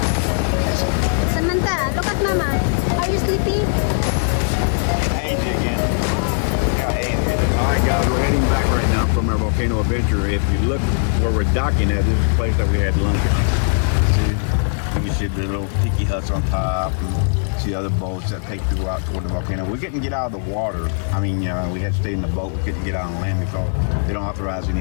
Samantha, look at Mama. Are you sleepy? Hazy again. Yeah, hazy. Alright guys, we're heading back right now from our volcano adventure. If you look where we're docking at, this is the place that we had lunch at. See, you can see the little tiki huts on top and see other boats that take you out toward the volcano. We couldn't get out of the water. I mean, we had to stay in the boat. We couldn't get out on land because they don't authorize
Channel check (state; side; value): silent; right; 57 dB below the other